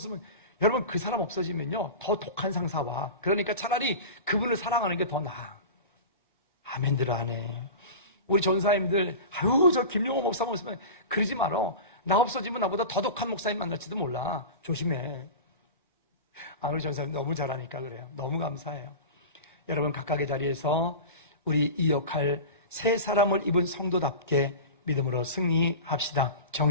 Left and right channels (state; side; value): inverted; both; correlation -0.31